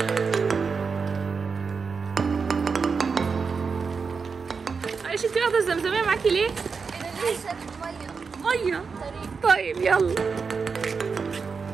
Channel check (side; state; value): left; quieter; 5.2 dB